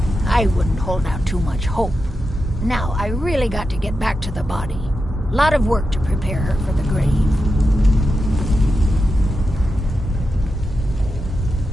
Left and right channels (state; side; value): normal; both; correlation 0.89